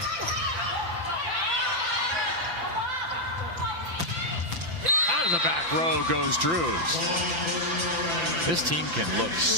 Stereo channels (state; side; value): late; left; 5.9 ms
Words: Out of the back row goes Drews. This team can look